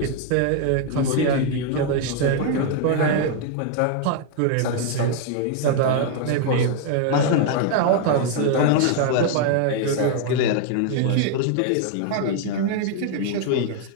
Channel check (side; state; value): both; different; correlation 0.00